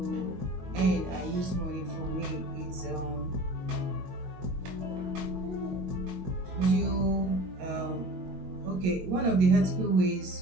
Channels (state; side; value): late; left; 22 ms